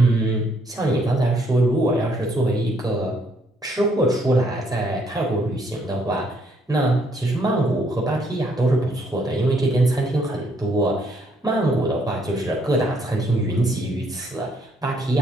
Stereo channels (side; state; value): both; normal; correlation 0.69